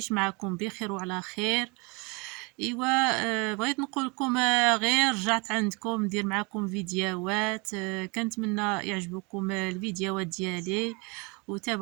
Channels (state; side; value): quieter; left; 28.9 dB